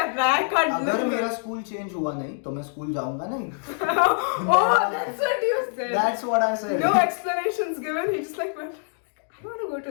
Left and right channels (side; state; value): right; silent; 62 dB below the other